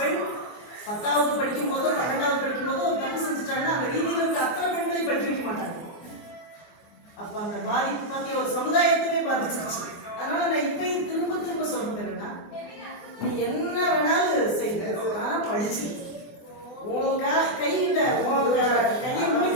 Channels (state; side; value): late; right; 24 ms